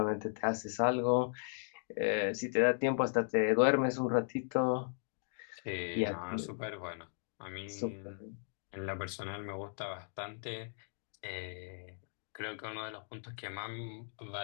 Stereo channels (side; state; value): right; silent; digital silence